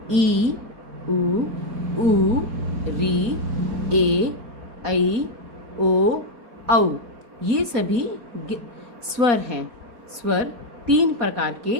उ, री, ए, ऐ, ओ, औ। ये सभी स्वर हैं। स्वर 3 प्रकार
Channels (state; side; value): late; left; 4.2 ms